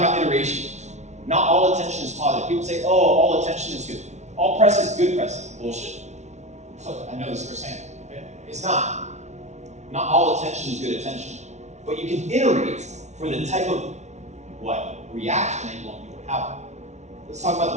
about iteration. Not all attention is positive. People say, oh, all attention is good. All press is good press. Bullshit. I know this firsthand. Okay? It's not. Not all attention is good attention. But you can iterate for the type of reaction that you want people to have. Let's talk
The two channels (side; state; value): left; late; 0.33 ms